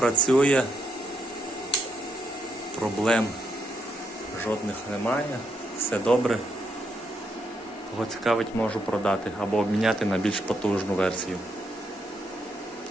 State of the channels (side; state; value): both; normal; correlation 0.78